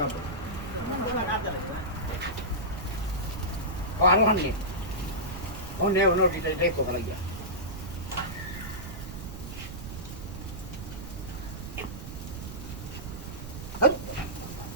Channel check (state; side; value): noise; right; rumble, 9 dB below the sound